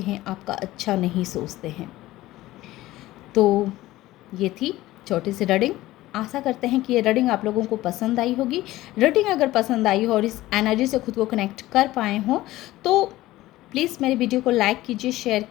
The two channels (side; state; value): right; quieter; 16.7 dB